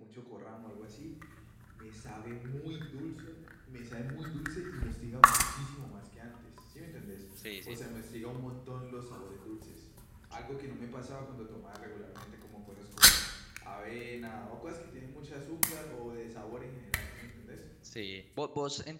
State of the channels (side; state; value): both; identical; correlation 1.00